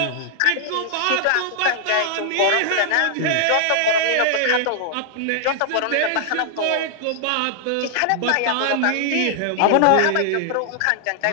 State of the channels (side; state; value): both; different; correlation 0.00